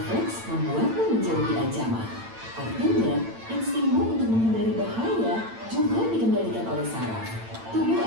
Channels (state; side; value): late; left; 8.9 ms